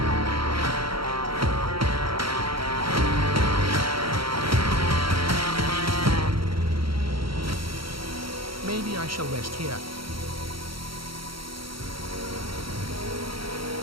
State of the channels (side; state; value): left; late; 0.74 ms